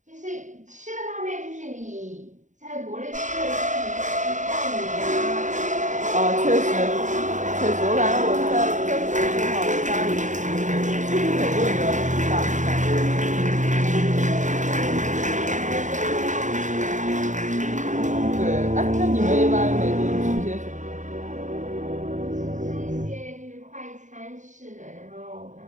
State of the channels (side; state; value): left; late; 0.36 ms